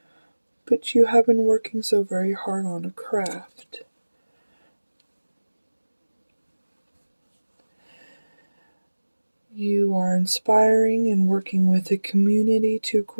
but you have been working so very hard on a craft. You are inspiring and working with a community to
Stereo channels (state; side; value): inverted; both; correlation -1.00